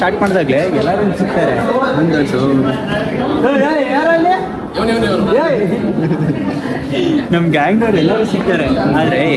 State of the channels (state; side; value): identical; both; correlation 1.00